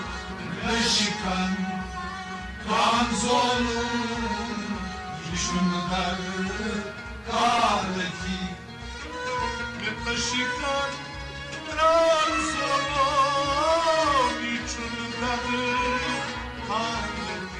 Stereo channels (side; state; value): both; identical; correlation 1.00